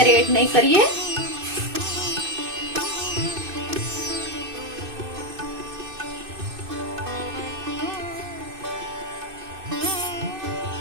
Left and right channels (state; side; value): late; left; 2.6 ms